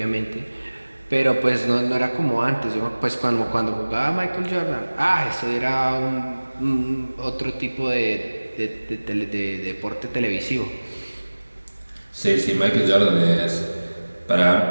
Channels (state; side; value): inverted; both; correlation -1.00